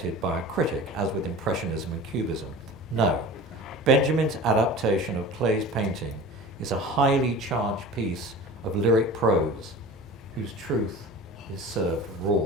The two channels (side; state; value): both; normal; correlation 0.37